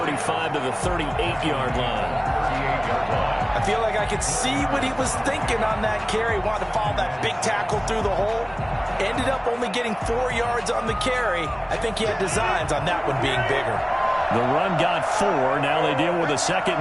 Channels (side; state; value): both; identical; correlation 1.00